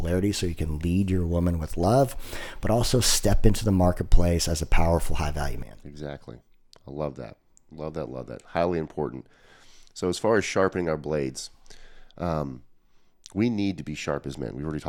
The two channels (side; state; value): both; identical; correlation 1.00